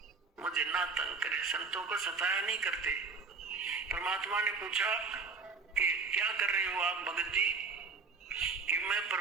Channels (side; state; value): left; quieter; 4.7 dB